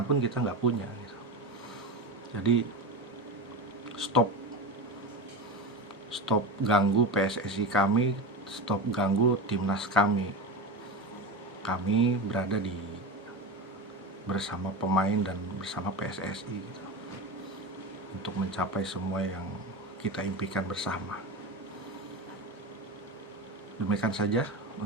pun kita nggak punya gitu. Jadi stop ganggu PSSI kami, stop ganggu timnas kami. Kami berada bersama pemain dan bersama PSSI gitu, untuk mencapai semua yang kita impikan bersama. Demikian saja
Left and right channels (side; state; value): both; normal; correlation 0.23